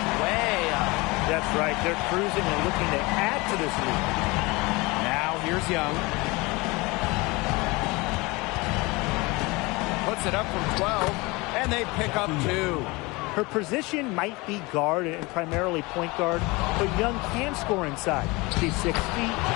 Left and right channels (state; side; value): quieter; right; 24.2 dB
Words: way up. That's right. They're cruising and looking to add to this lead. Now here's Young. Puts it up from 12, and they pick up 2. Her position might be guard and primarily point guard, but Young can score inside. She's 6 feet,